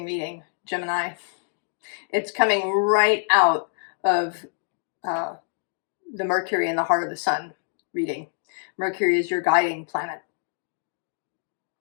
reading, Gemini. It's coming right out of the Mercury in the heart of the sun reading. Mercury is your guiding planet.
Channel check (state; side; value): silent; right; digital silence